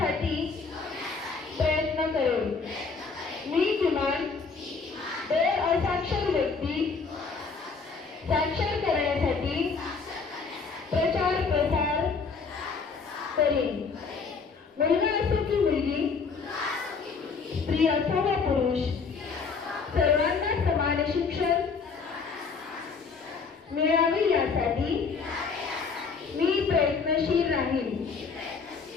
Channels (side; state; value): right; quieter; 5.0 dB